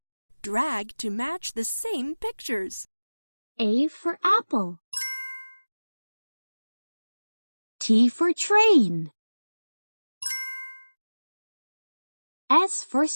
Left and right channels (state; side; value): inverted; both; correlation -1.00